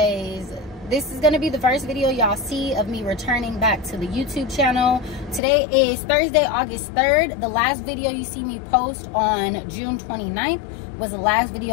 this is gonna be the first video y'all see of me returning back to the YouTube channel. Today is Thursday, August 3rd. The last video you see me post on June 29th was the last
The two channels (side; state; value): right; drops out; at 5.4 s